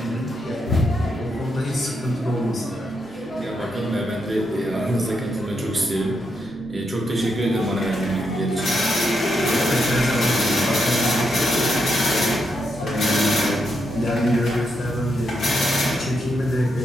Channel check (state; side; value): normal; both; correlation 0.81